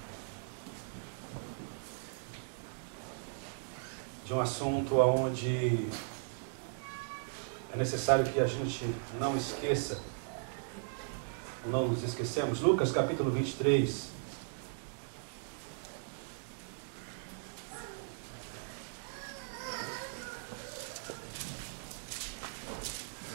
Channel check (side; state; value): left; silent; digital silence